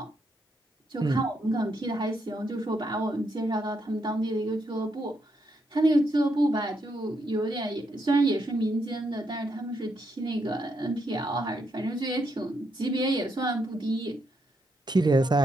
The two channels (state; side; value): normal; both; correlation 0.79